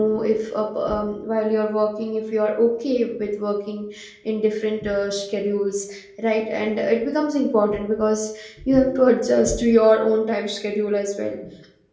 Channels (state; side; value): identical; both; correlation 1.00